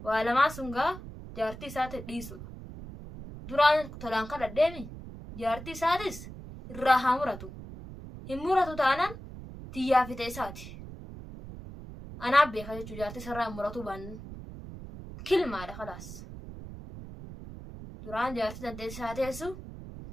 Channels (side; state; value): right; noise; rumble, 12 dB below the sound